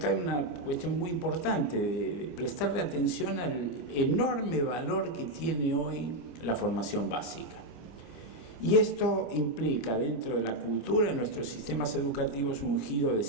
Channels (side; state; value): right; late; 25 ms